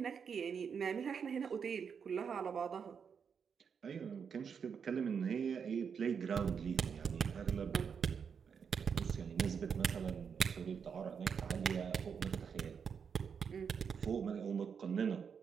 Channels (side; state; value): left; quieter; 6.7 dB